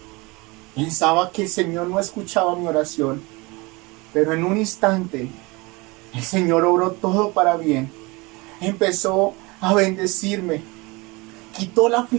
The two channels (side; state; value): left; quieter; 24.9 dB